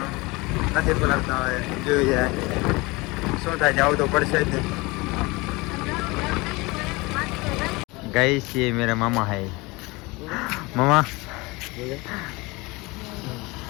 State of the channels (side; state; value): right; quieter; 24.1 dB